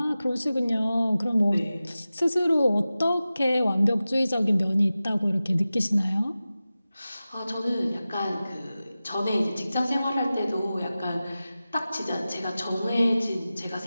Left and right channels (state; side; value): inverted; both; correlation -0.95